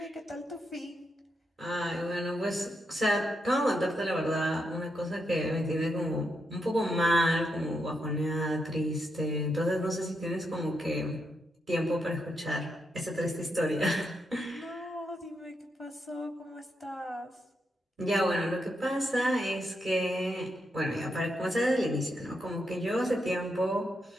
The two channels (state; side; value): normal; both; correlation 0.82